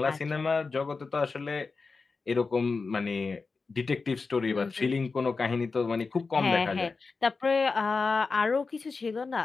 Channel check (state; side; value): quieter; right; 4.3 dB